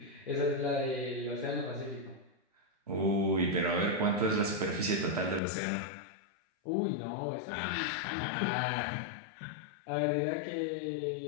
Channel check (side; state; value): right; drops out; at 5.4 s